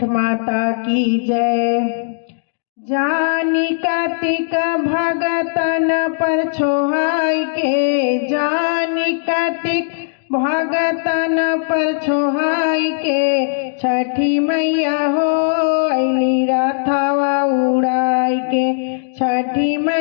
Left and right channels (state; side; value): silent; right; digital silence